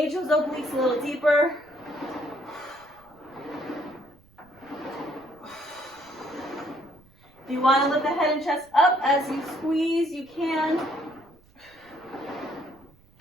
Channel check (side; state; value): right; noise; rumble, 28 dB below the sound